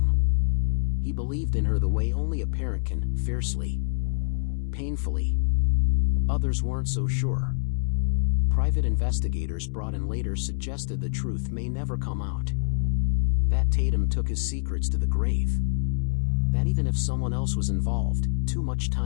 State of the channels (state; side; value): silent; right; 61 dB below the other